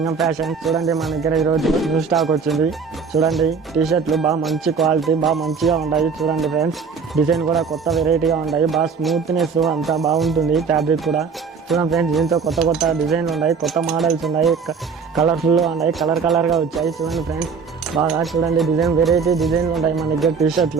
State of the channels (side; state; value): left; quieter; 5.6 dB